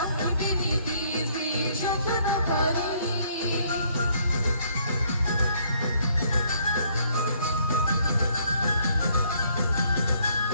नीति से शतन करी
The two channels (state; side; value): inverted; both; correlation -0.66